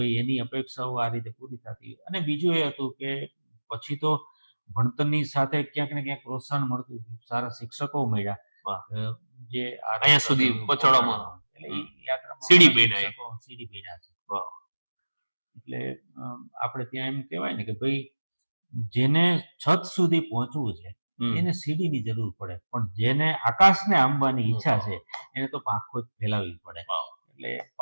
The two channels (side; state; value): both; inverted; correlation -1.00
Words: એની અપેક્ષાઓ આ રીતે પૂરી થતી. અને બીજું એ હતું કે પછી તો ભણતરની સાથે ક્યાંક ને ક્યાંક પ્રોત્સાહન મળતું, સારા શિક્ષકો મળ્યા જે અહીંયા સુધી પહોંચાડવામાં, એટલે એ યાત્રામાં સીડી બન્યા છે. એટલે આપણે ત્યાં એમ કહેવાય ને કે ભાઈ જેને છત સુધી પહોંચવું છે એને સીડીની જરૂર પડે, પણ જેને આકાશને આંબવાની ઈચ્છા છે એને તો પાંખો જ ફેલાવવી પડે. એટલે